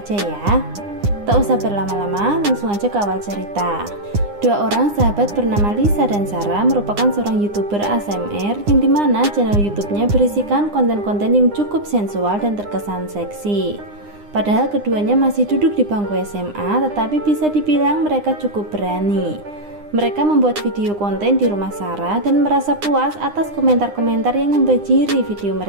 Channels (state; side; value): late; left; 9.8 ms